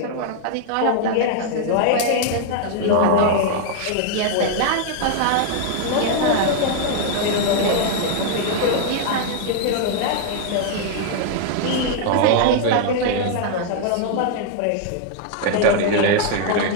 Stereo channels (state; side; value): different; both; correlation 0.00